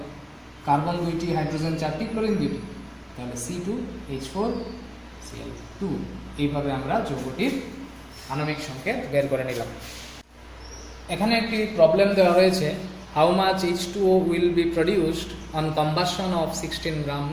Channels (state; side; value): identical; both; correlation 1.00